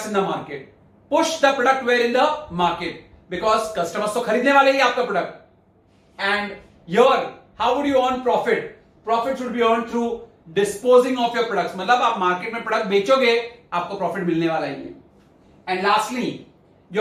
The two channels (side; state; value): both; identical; correlation 1.00